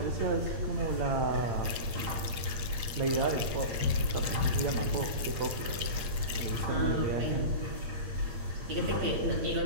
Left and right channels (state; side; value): late; left; 8.2 ms